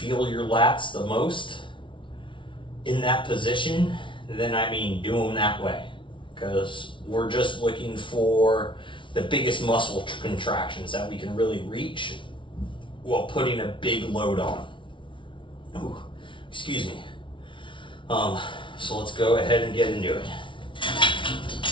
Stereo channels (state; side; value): late; right; 0.24 ms